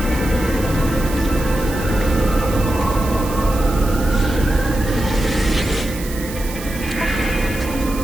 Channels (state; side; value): noise; right; hiss, 13 dB below the sound